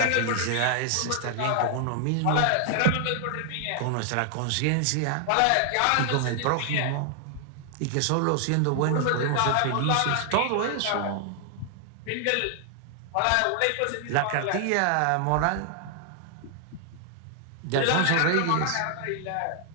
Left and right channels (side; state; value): both; different; correlation 0.00